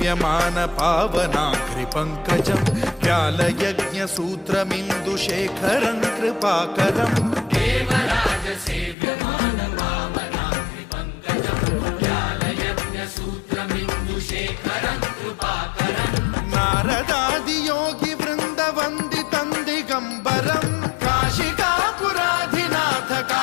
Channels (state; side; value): drops out; right; at 9.0 s